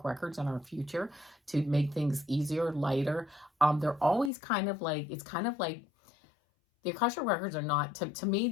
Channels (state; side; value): drops out; right; at 4.3 s